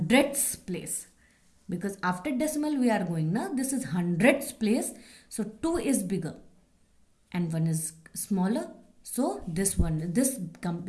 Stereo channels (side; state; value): both; identical; correlation 1.00